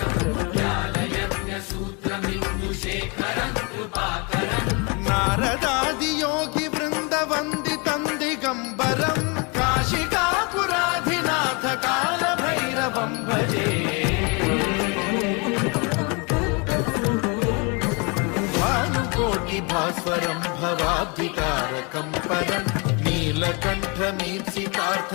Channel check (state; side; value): quieter; right; 31.6 dB